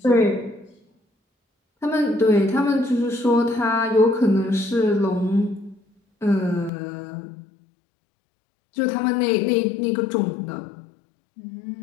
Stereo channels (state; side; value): drops out; right; at 6.7 s